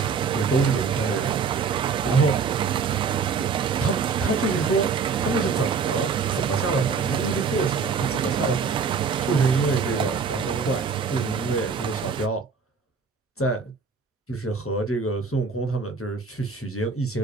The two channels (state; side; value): quieter; left; 5.3 dB